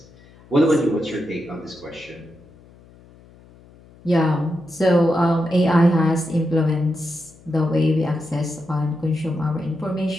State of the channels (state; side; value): noise; left; hum, 25 dB below the sound